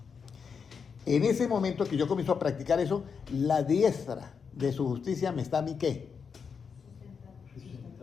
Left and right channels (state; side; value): quieter; right; 6.1 dB